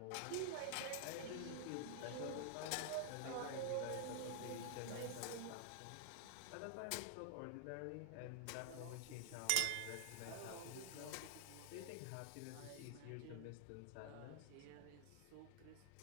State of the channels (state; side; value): different; both; correlation 0.00